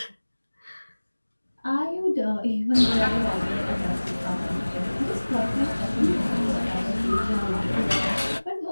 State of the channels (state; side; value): inverted; both; correlation -1.00